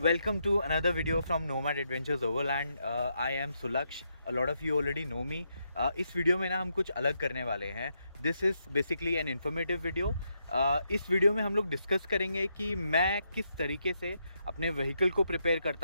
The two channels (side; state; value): both; inverted; correlation -0.80